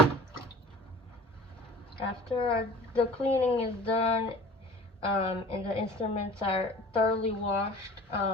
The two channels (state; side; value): normal; both; correlation 0.43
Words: after the cleaning is done, and the instruments are thoroughly washed,